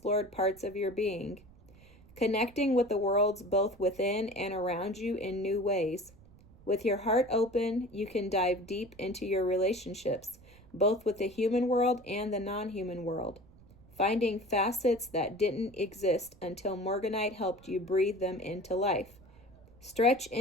parts of your being, connecting with the worlds both within and around you in new ways. With your heart open, you can dive deep into your relationships, both with the human world and the non-human world, finding facets that didn't exist until Morganite helped you breathe them into life. Stretch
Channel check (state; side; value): noise; right; rumble, 24 dB below the sound